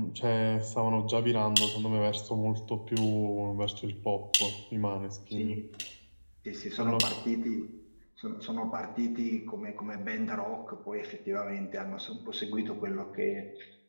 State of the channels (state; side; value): inverted; both; correlation -1.00